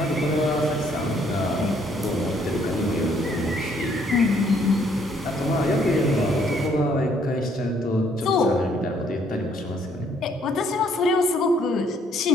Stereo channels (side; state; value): both; normal; correlation 0.66